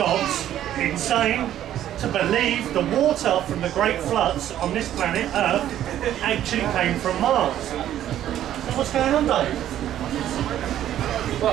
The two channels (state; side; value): quieter; left; 11.7 dB